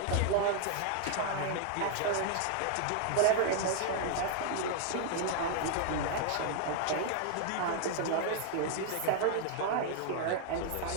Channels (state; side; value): different; both; correlation 0.00